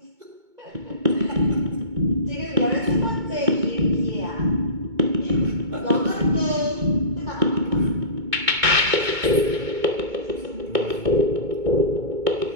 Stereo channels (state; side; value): late; left; 2.2 ms